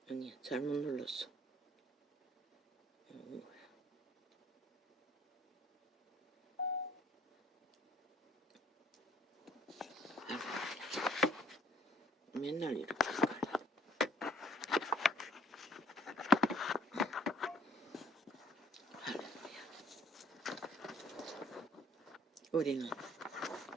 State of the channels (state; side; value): normal; both; correlation 0.58